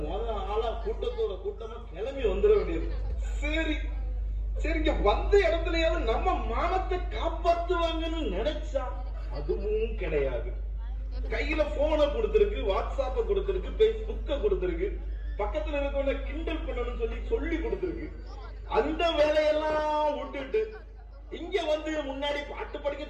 ஆளா கூட்டத்தோட கூட்டமா கிளம்பி வந்துட வேண்டியது. சரி சரிங்க, வந்த இடத்துலயாவது நம்ம மானத்தை காப்பாத்துவாங்கன்னு நினைச்சா அதுவும் கிடையாது. கையில போனை கொடுத்திருக்கு, வாட்ஸ்அப்ப கொடுத்திருக்கு, பேஸ்புக்க கொடுத்திருக்கு, பக்கத்துல இருக்கவங்க கிண்டல் பண்ணணும்னு சொல்லி கொடுத்திருக்கு. அந்த வேலையெல்லாம் விட்டுட்டு இங்க வந்து முன்னாடி பாட்டு படிக்க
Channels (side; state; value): both; identical; correlation 1.00